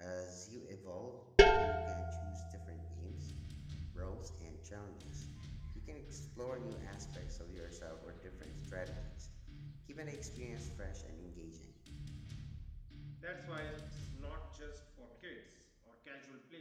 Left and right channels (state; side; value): identical; both; correlation 1.00